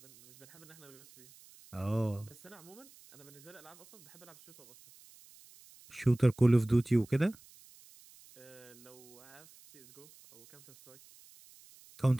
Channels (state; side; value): noise; right; hiss, 23 dB below the sound